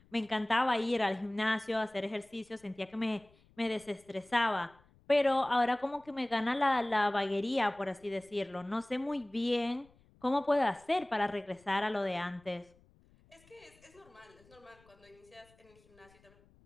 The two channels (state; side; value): noise; left; rumble, 30 dB below the sound